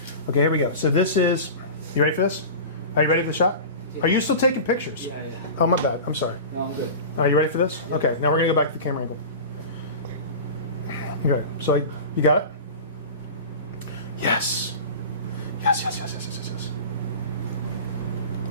here we go. So this is, you ready for this? Are you ready for the shot? Are you still taking pictures? Yeah. Oh, my bad. I'm sorry. No, I'm good. Are you ready for this? Okay, now we're going to go back to the camera angle. Okay, so you got it? Yes. Yes.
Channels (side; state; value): both; inverted; correlation -0.32